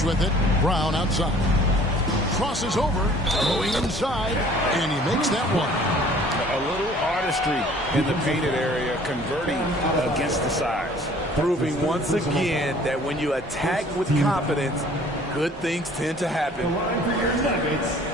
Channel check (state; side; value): normal; both; correlation 0.53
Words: with it. Brown outside. Crosses over. Going inside. And he makes that one. A little artistry in the painted area, converting against the size. Proving once again that when you attack with confidence, good things tend to happen. The line for your Nuggets,